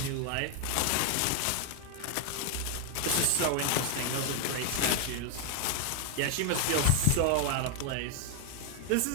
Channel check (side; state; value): both; different; correlation 0.00